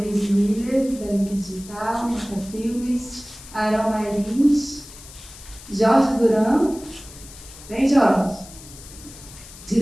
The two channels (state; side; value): noise; left; hiss, 18 dB below the sound